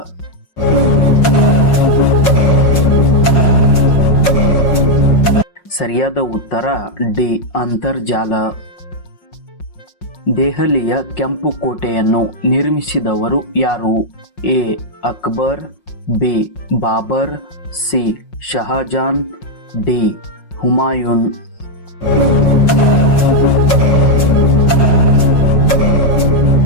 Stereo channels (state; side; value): late; right; 5.5 ms